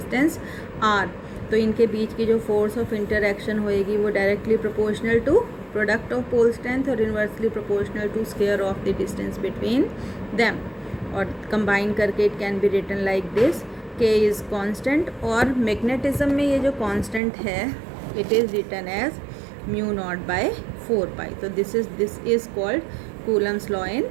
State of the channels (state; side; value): drops out; left; at 17.2 s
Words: r। तो इनके बीच की जो फोर्स ऑफ इंटरैक्शन होएगी वो directly proportional to product of pole strength और inversely proportional to square of the distance between them. और कंबाइन करके it can be written like this, k is constant. और मैग्नेटिज्म में ये जो कांस्टेंट है it is written as mu not by 4 pi. तो this is called Coulomb's law in